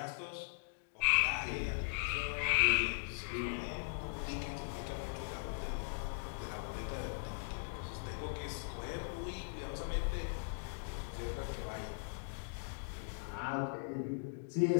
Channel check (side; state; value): right; silent; digital silence